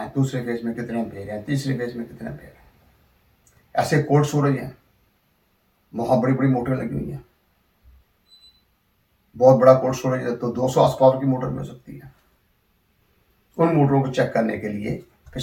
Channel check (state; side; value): identical; both; correlation 1.00